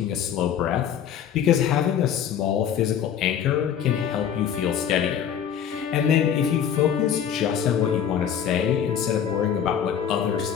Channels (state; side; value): quieter; right; 8.7 dB